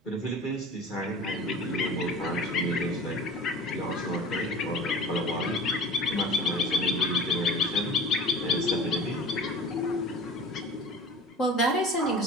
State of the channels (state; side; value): normal; both; correlation 0.39